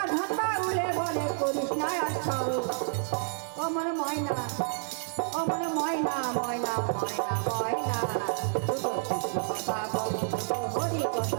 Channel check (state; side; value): silent; left; digital silence